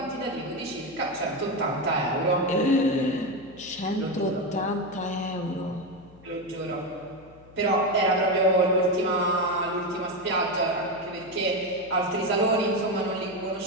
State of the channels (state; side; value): noise; left; hum, 24 dB below the sound